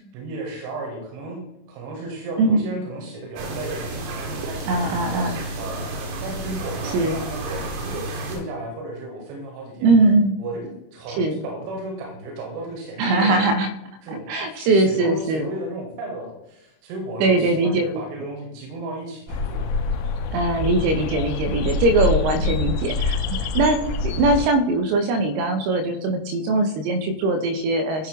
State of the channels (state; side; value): late; left; 26 ms